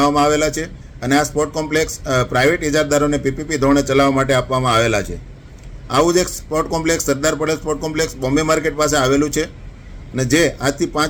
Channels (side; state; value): both; identical; correlation 1.00